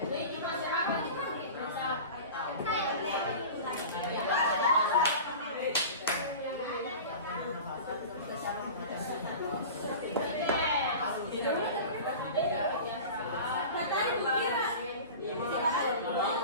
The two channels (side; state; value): both; inverted; correlation -0.35